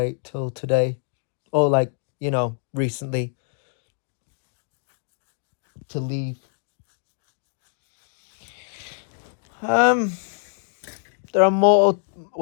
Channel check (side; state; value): right; silent; digital silence